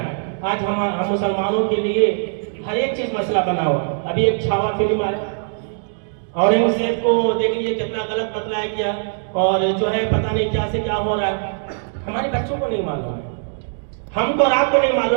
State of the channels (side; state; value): left; silent; digital silence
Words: आज हम मुसलमानों के लिए हर एक चीज मसला बना हुआ। अभी एक छावा फिल्म आया, औरंगजेब को देख लीजिए कितना गलत बतलाया गया, और जो है पता नहीं क्या से क्या हो रहा है। हमारे बच्चों को नहीं मालूम है, हमको और आपको नहीं